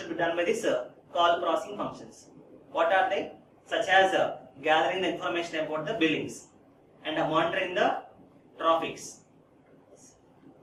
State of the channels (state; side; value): identical; both; correlation 1.00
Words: be done by this call processing functions. What are they? Such as gathering the information about the billings and monitoring the traffics,